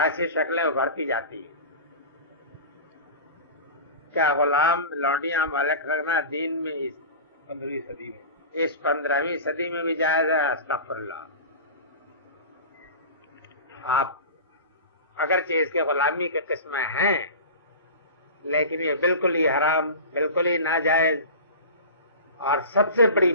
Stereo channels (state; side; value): inverted; both; correlation -0.32